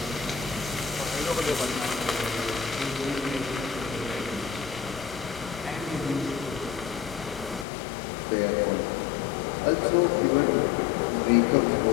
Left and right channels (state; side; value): drops out; right; at 7.7 s